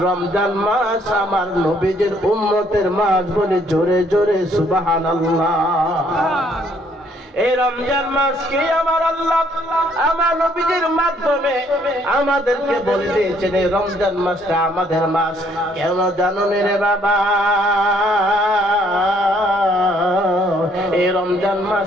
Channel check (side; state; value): both; normal; correlation 0.65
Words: রমজান মাস আমার নবীজির উম্মতের মাস বলে জোরে জোরে সুবহানাল্লাহ। এই রমজান মাসকে আমার আল্লাহ আমার নবীজির মাধ্যমে আমাদেরকে বলে দিয়েছেন এই রমজান মাসটা আমাদের মাস। কেন জানো রে বাবা? এই রমজান